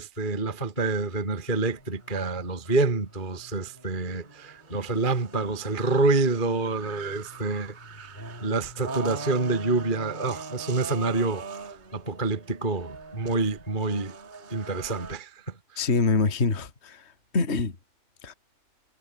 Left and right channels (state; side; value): late; right; 2.4 ms